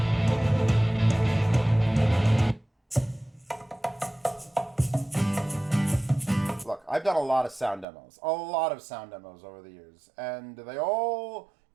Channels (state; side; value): drops out; left; at 7.9 s